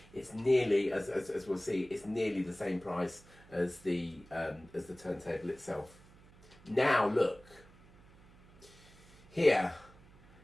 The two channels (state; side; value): noise; right; hum, 24 dB below the sound